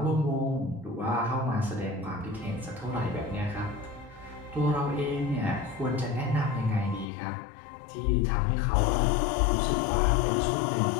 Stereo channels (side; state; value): right; drops out; at 7.1 s